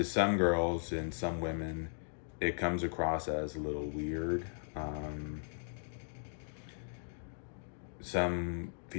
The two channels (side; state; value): right; silent; digital silence